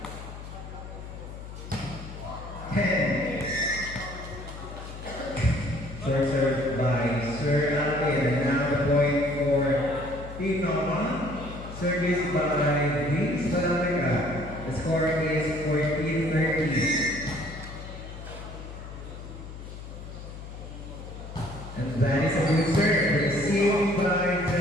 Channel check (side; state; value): left; noise; hum, 12 dB below the sound